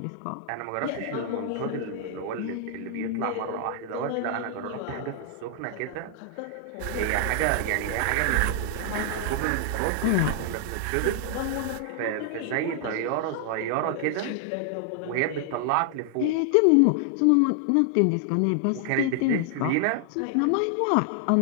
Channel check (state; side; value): different; both; correlation 0.00